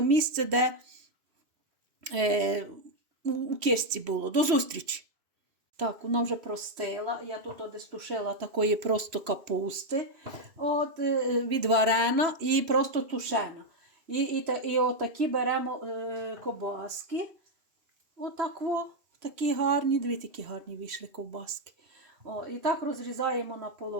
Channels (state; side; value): late; left; 3.1 ms